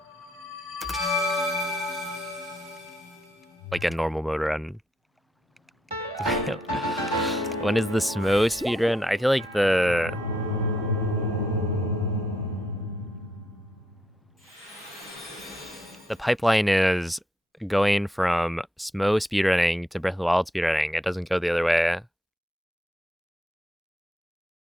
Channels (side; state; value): both; normal; correlation 0.78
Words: like a normal mode run. When is the Smo speedrun? I feel like the pipeline is going from Smo speedrunning to Breath of the Wild speedrunning. It doesn't go the other way.